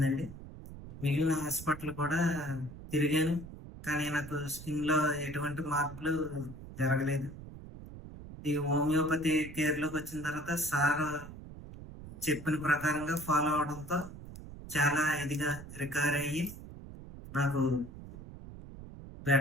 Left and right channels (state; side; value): noise; right; rumble, 14 dB below the sound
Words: మిగిలిన హాస్పిటల్ కూడా తిరిగాను, కానీ నాకు స్కిన్లో ఎటువంటి మార్పులు జరగలేదు. ఈ హోమియోపతి కేర్లోకి వచ్చిన తర్వాత సార్ చెప్పిన ప్రకారంగా ఫాలో అవడంతో చాలా ఇదిగా రికవర్ అయ్యి నాకు